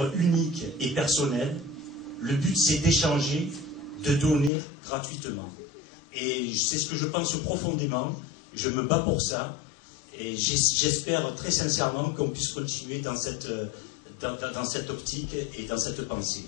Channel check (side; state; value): right; drops out; at 4.5 s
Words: unique et personnel. Le but, c'est d'échanger, de donner gratuitement. Et c'est ce que je pense profondément. Je me bats pour ça. Et j'espère très sincèrement qu'on puisse continuer dans cette optique et dans cette pensée.